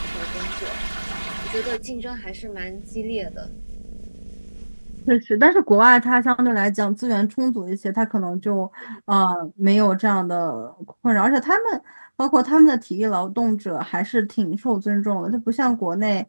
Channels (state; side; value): inverted; both; correlation -1.00